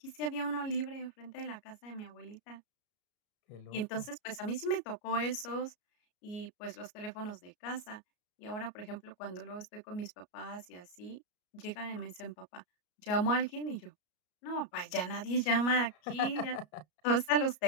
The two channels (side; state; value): right; late; 33 ms